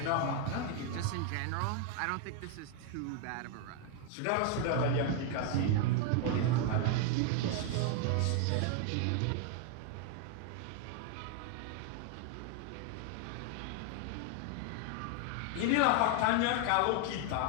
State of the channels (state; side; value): different; both; correlation 0.01